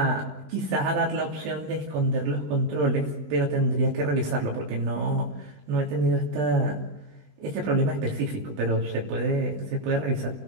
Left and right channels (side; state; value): left; late; 20 ms